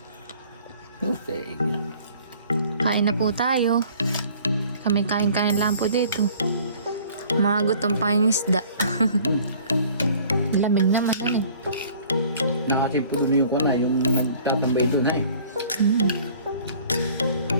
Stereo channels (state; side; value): inverted; both; correlation -0.52